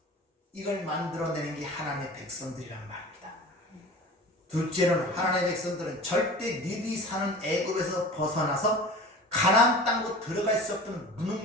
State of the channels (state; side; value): normal; both; correlation 0.38